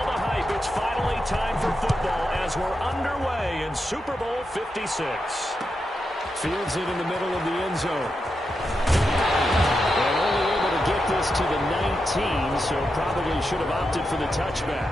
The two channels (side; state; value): both; normal; correlation 0.87